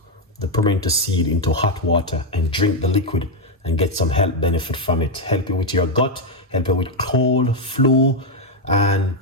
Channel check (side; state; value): both; normal; correlation 0.02